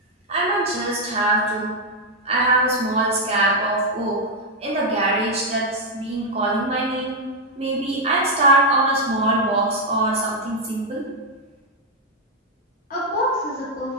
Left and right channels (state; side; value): normal; both; correlation 0.01